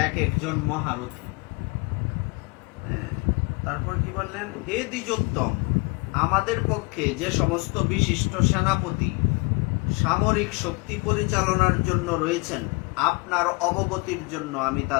এক একজন মহারথী। তারপর কি বললেন, হে দ্বিজোত্তম, আমাদের পক্ষে যে সমস্ত বিশিষ্ট সেনাপতি সামরিক শক্তি পরিচালনার জন্য রয়েছেন, আপনার অবগতির জন্য আমি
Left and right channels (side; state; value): right; quieter; 28.5 dB